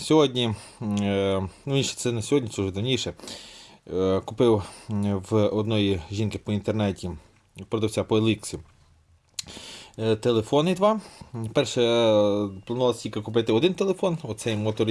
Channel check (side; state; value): both; identical; correlation 1.00